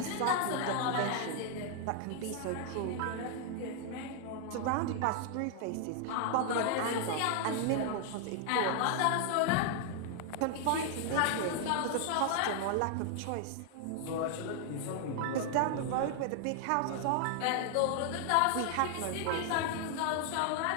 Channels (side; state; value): both; different; correlation 0.00